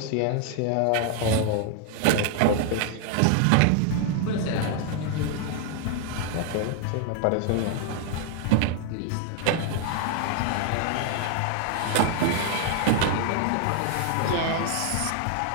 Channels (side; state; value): both; different; correlation 0.00